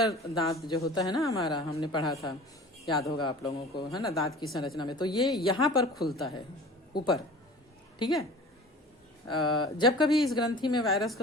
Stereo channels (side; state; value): both; normal; correlation 0.41